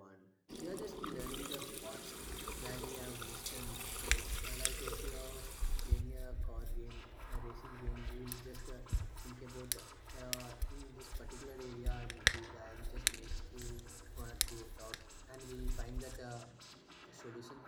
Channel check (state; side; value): identical; both; correlation 1.00